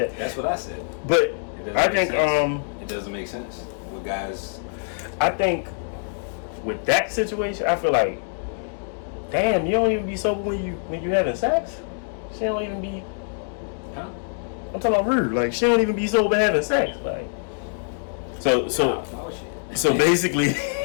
That's what I said. But I think it doesn't make sense with guys. I think with that situation, I feel like, damn, you don't even be sober when you having sex. She don't even be. Huh? I'm talking about rude. Like she don't even be sober having sex. Like so basically,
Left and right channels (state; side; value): silent; right; digital silence